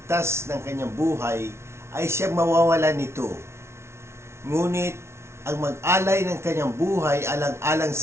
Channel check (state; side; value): late; left; 0.13 ms